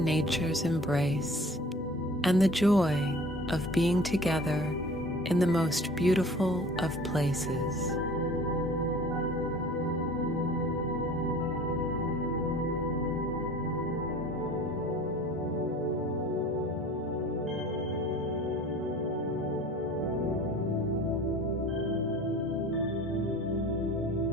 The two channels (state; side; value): normal; both; correlation 0.45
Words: nature's embrace, and the joy of being together in the most beautiful of places.